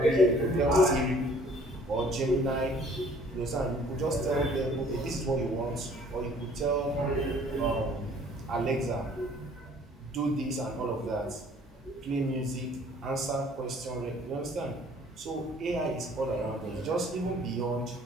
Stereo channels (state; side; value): normal; both; correlation 0.55